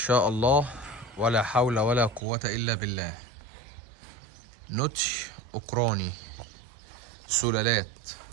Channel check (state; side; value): drops out; left; at 2.2 s